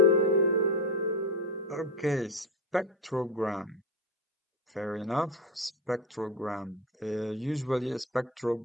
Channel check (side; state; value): both; normal; correlation 0.19